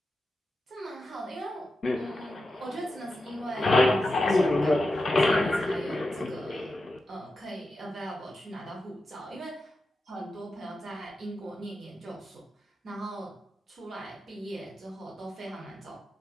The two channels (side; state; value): both; normal; correlation 0.90